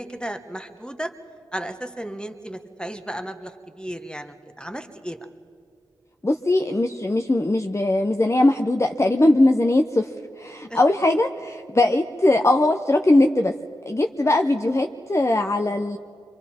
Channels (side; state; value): both; normal; correlation 0.91